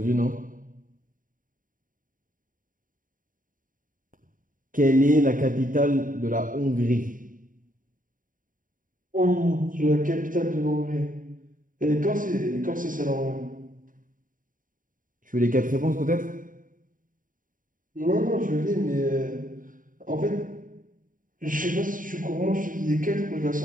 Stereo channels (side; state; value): left; late; 0.39 ms